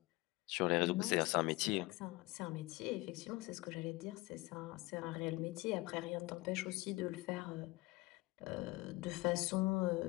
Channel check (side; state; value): right; quieter; 21.9 dB